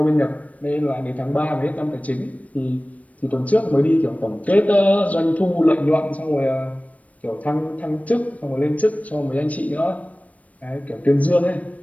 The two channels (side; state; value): right; late; 0.068 ms